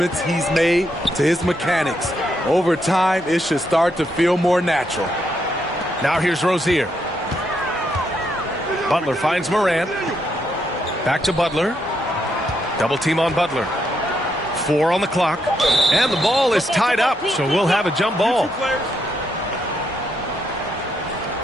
he's made to his mechanics. Over time, it should start to feel more natural. Now here's Rozier. Butler finds Morant. Back to Butler. Double team on Butler. 4 on the clock. And the ball is tied up, so we'll have a jump ball.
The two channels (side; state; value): both; normal; correlation 0.78